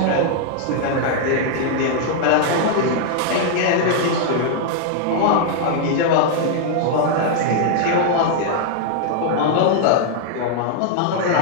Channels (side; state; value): both; different; correlation -0.01